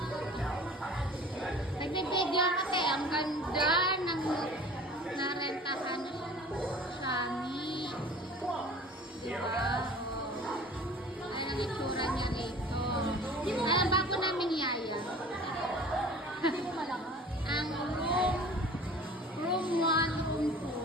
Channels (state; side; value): normal; both; correlation 0.44